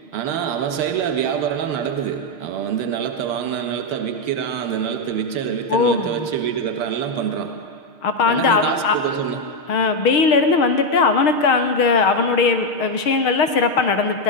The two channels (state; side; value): late; right; 6.5 ms